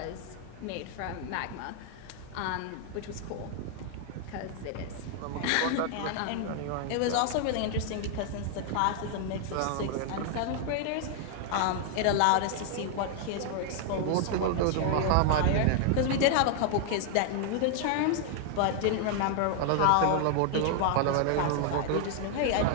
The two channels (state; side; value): different; both; correlation 0.00